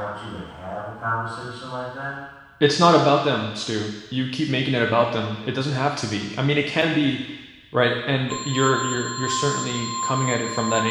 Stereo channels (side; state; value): both; identical; correlation 1.00